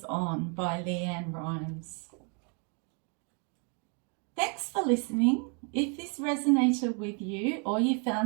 On by Leanne Rimes. Thanks for listening. If this resonated with you or you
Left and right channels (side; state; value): left; quieter; 38.0 dB